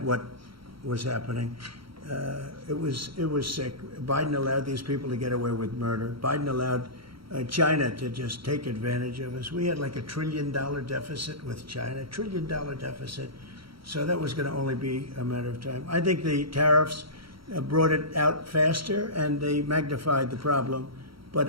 what was happening. It was sick. Biden allowed these people to get away with murder. Biden allowed China to just take advantage of us. We had like $1 trillion deficit with China, $1 trillion deficit. So that was going to only be a matter of time. I think the tariffs brought it out faster and they magnified the problem. But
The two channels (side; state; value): left; late; 0.74 ms